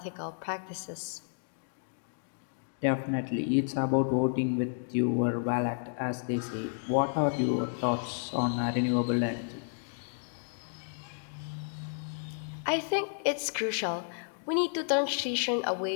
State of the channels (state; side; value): silent; right; digital silence